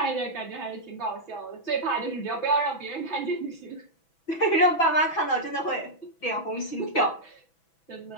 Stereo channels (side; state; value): right; late; 6.1 ms